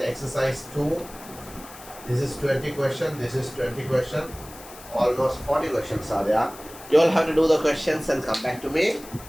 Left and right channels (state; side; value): noise; left; hiss, 18 dB below the sound